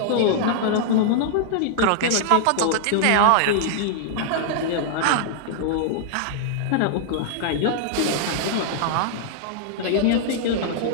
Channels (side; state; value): both; different; correlation -0.01